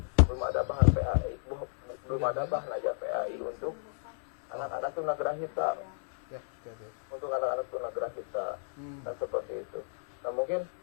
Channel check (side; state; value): right; silent; 56 dB below the other